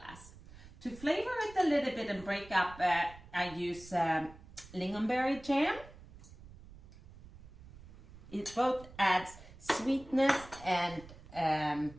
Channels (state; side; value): noise; right; rumble, 19 dB below the sound